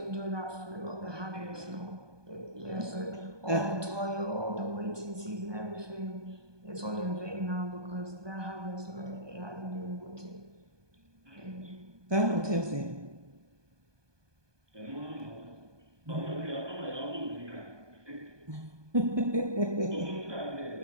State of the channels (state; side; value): late; left; 1.2 ms